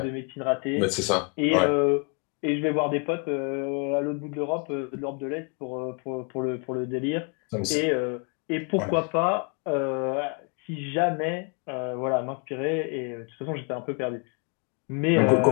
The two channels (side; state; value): right; quieter; 36.1 dB